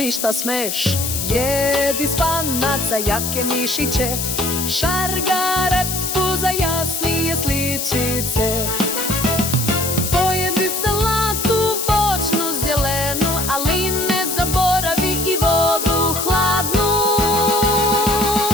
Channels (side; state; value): left; noise; hiss, 2 dB below the sound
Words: šta smeš. Jedi spanac za jake mišiće, šargarepu za jasnije sličice. Pojedi salatu voćnu zelenu, ali ne zaboravi i vodu hladnu.